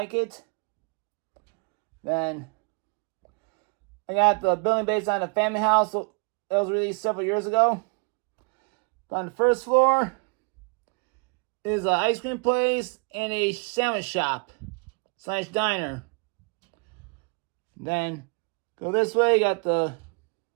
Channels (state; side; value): quieter; left; 35.7 dB